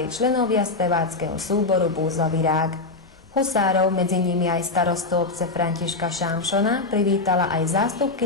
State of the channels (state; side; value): quieter; right; 3.5 dB